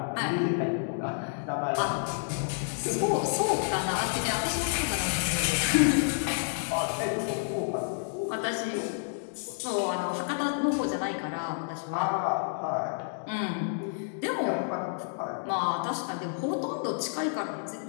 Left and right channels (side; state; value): right; silent; digital silence